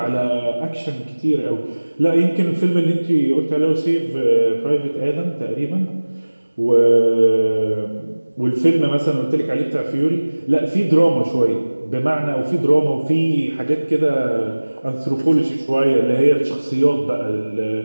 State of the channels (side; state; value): both; inverted; correlation -1.00